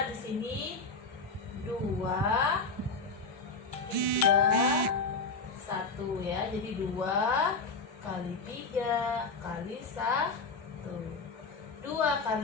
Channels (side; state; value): right; quieter; 4.0 dB